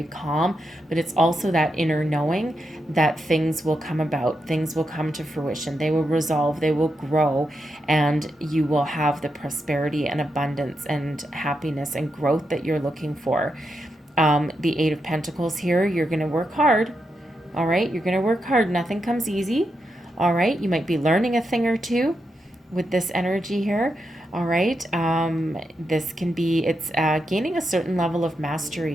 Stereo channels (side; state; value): both; normal; correlation 0.85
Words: calm, but it's also that inner knowing that things will come about, things will come to fruition, they will resolve, they will grow, and you will have the prosperity and abundance and happiness and growth that you're looking for. The 8 of Pentacles here, you're going to work hard. All right, you're going to work hard. Nothing comes easy. All right, you might be learning a thing or two with this energy here. All right, this can be, it's gaining a certain level of